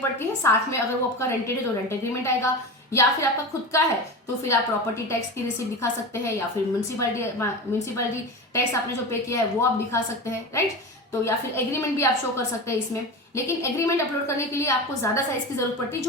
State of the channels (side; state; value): both; normal; correlation 0.26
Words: है। साथ में अगर वो आपका रेंटेड है तो रेंट एग्रीमेंट आएगा, या फिर आपका खुद का है तो फिर आप प्रॉपर्टी टैक्स की रिसीट दिखा सकते हैं, या फिर म्यूनसिपैलिटी टैक्स आपने जो पे किया है वो आप दिखा सकते हैं, राइट। तो या फिर एग्रीमेंट भी आप शो कर सकते हैं इसमें। लेकिन एग्रीमेंट अपलोड करने के लिए आपको ज्यादा साइज की जरूरत पड़ती है